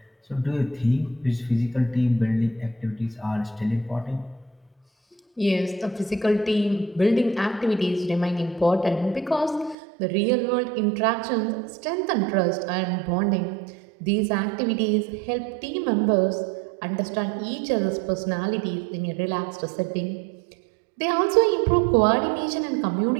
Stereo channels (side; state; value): left; drops out; at 9.8 s